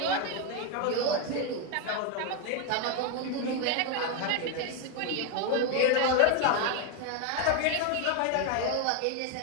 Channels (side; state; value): both; different; correlation 0.01